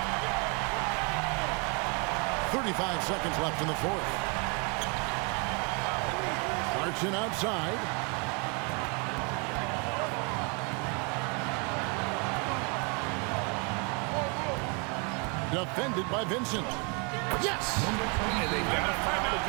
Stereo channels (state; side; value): quieter; left; 33.8 dB